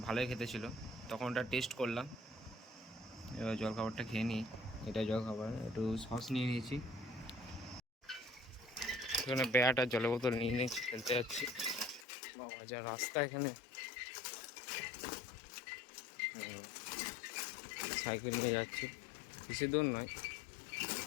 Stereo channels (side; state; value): right; drops out; at 12.1 s